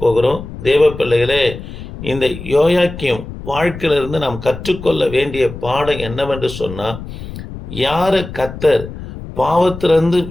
போகிறோம். தேவ பிள்ளைகளே, இந்த யோயாக்கீம் வாழ்க்கையிலிருந்து நாம் கற்றுக்கொள்ள வேண்டிய பாடம் என்னவென்று சொன்னால், யாரை கர்த்தர் பாவத்திலிருந்து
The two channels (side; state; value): left; noise; rumble, 11 dB below the sound